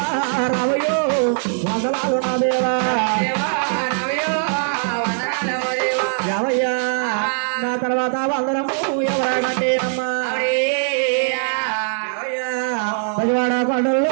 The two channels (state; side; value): silent; left; digital silence